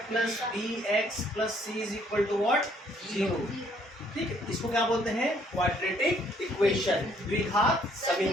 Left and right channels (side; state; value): both; normal; correlation 0.65